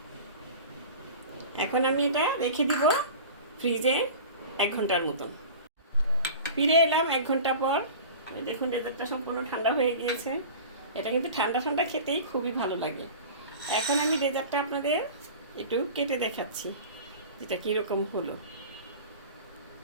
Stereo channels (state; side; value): inverted; both; correlation -0.37